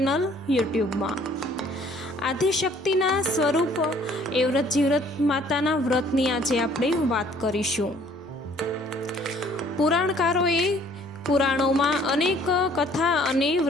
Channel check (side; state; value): both; normal; correlation 0.58